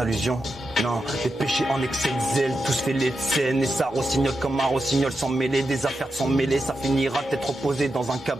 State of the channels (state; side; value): normal; both; correlation 0.88